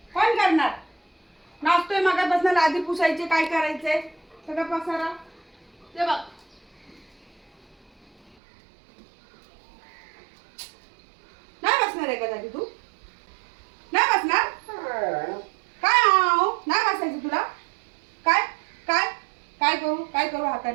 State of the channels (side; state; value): left; drops out; at 8.3 s